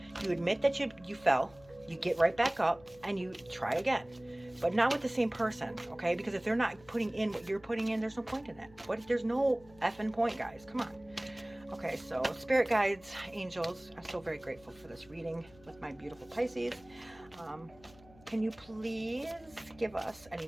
You admit that you fell, you get right back up, and you try again. But not with the same person, okay? Because if they're not putting in what you're putting in, there's no point in that. There's no effing point, guys. Come on. Okay, so spirit guides, angels, I'm so very grateful for this reading with my beautiful Pisces. Can you please give us any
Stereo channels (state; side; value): noise; left; hum, 25 dB below the sound